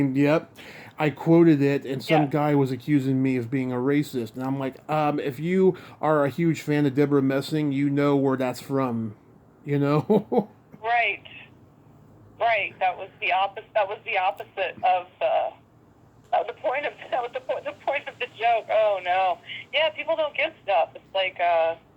yep. I quoted it, and some guy was accusing me of being a racist, and I'm like, if you are a huge fan of Deborah Messing, you know where that's from, Right. Right, that was the opposite. That was the opposite of the point of the point of the joke. Oh no, yeah, people don't get stuff. It's like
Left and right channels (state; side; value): identical; both; correlation 1.00